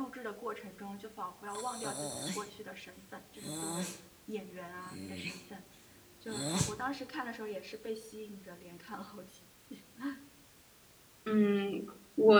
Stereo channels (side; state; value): both; identical; correlation 1.00